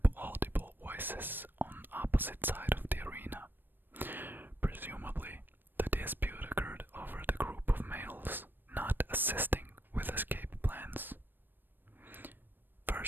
audible voices on opposite side of the arena, presumably the dispute occurred over the group of males not assisting with escape plans.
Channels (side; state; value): left; late; 0.094 ms